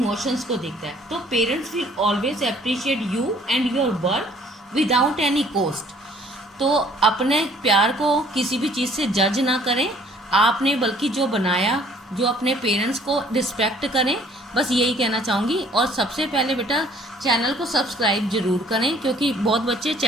को देखता है। तो parents will always appreciate you and your work without any cost. तो अपने प्यार को किसी भी चीज़ से जज ना करें आपने, बल्कि जो बनाया, जो अपने पेरेंट्स को रिस्पेक्ट करें, बस यही कहना चाहूँगी। और सबसे पहले बेटा चैनल को सब्सक्राइब ज़रूर करें, क्योंकि बहुत बच्चे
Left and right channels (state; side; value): normal; both; correlation 0.57